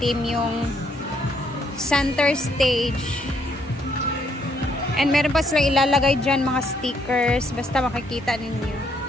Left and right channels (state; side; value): normal; both; correlation 0.71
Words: yung center stage. And meron pa silang ilalagay dyan mga stickers. Basta makikita ninyo.